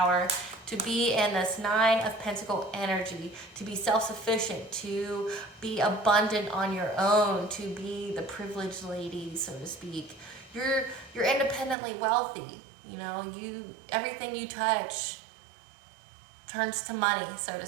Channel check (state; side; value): drops out; left; at 11.8 s